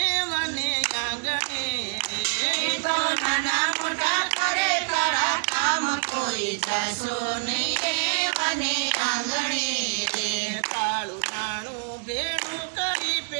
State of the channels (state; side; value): silent; left; 61 dB below the other